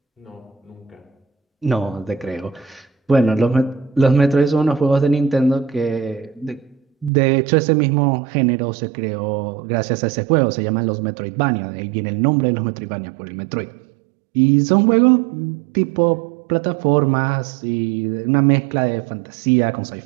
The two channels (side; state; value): left; drops out; at 7.1 s